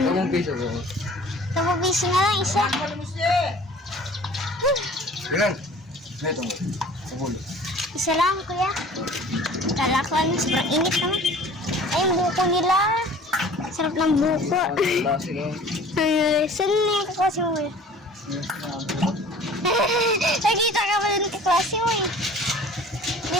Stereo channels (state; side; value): normal; both; correlation 0.47